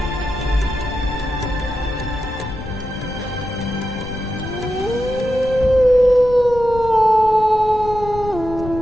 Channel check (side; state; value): left; noise; rumble, 12 dB below the sound